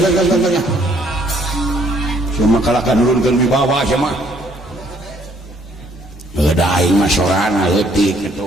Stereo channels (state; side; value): normal; both; correlation 0.64